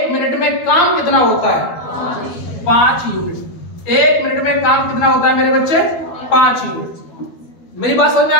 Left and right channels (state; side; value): late; right; 12 ms